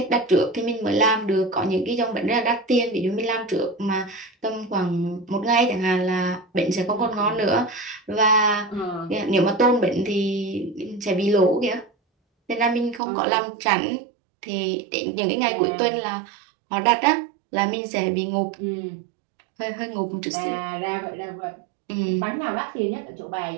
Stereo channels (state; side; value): drops out; left; at 13.0 s